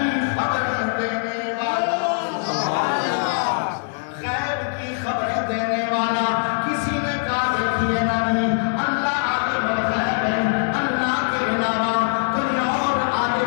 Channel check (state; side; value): silent; right; 60 dB below the other